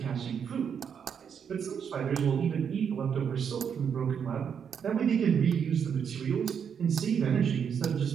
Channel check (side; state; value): left; quieter; 7.4 dB